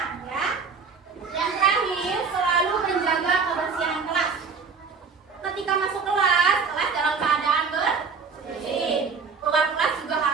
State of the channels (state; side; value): quieter; left; 5.3 dB